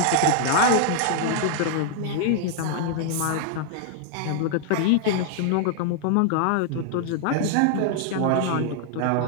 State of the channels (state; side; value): different; both; correlation 0.00